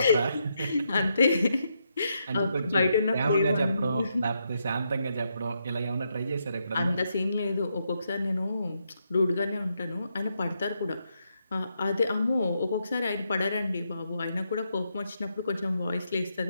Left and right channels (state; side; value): inverted; both; correlation -0.80